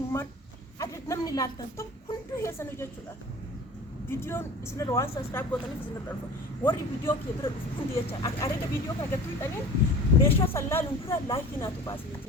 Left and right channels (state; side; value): normal; both; correlation 0.40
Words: عدد نمني لالتن طب كنتو هي سنة جاتشولا فيديو اسمه روان سبسكرايب بوتاني في سنة الألف وري فيديو كيبر كنتي يجا أريد فيديو كاجتوي تاني بيشوا سلا لنقرا لايك ناتو باسي